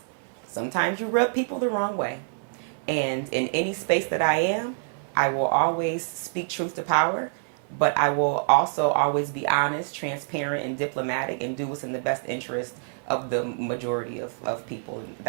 sometimes you rub people the wrong way. And in any space that I am, I will always speak truth to power, but I will also always be honest, transparent, and diplomatic and do what's in the best interest of the majority of people. And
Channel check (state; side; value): silent; left; digital silence